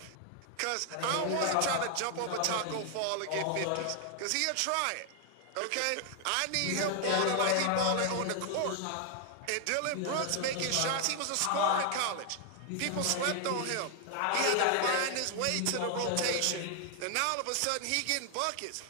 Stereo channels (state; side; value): different; both; correlation 0.00